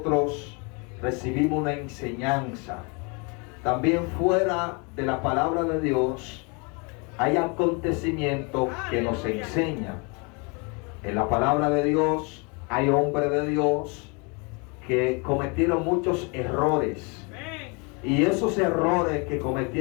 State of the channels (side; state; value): right; quieter; 32.3 dB